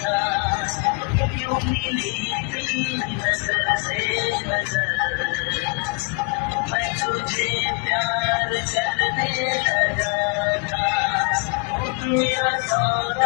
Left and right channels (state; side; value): quieter; right; 30.1 dB